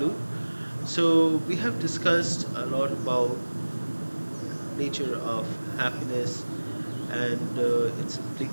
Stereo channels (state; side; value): inverted; both; correlation -1.00